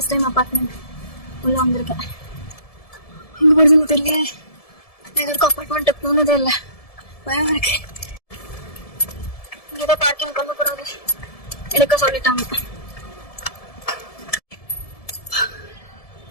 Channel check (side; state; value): right; late; 1.7 ms